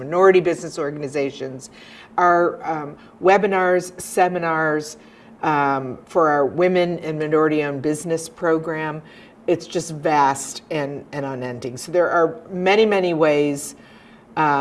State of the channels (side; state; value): both; identical; correlation 1.00